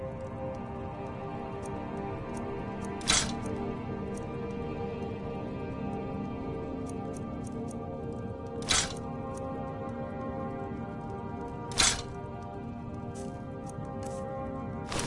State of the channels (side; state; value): both; identical; correlation 1.00